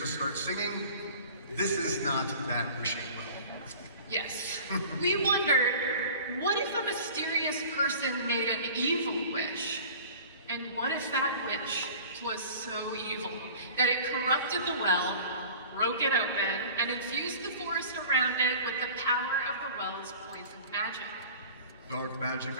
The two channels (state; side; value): inverted; both; correlation -0.42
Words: starts singing. This is not that wishing well. Yes. We wondered, what if a mysterious person made an evil wish? And what if that wish was so evil that it corrupted the well, broke it open, and infused the forest around it with the power of the well's poison magic? Dark magic